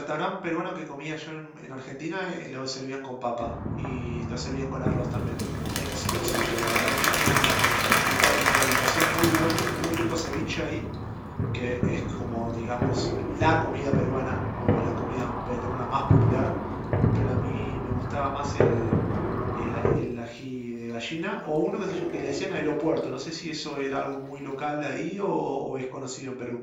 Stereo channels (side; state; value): both; identical; correlation 1.00